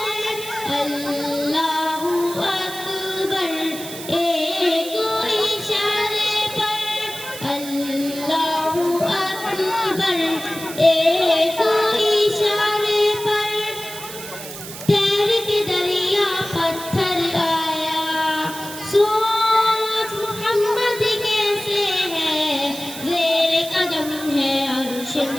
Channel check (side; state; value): right; noise; hiss, 11 dB below the sound